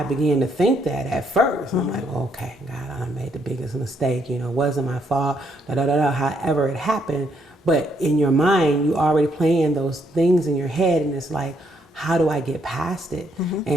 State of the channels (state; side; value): normal; both; correlation 0.73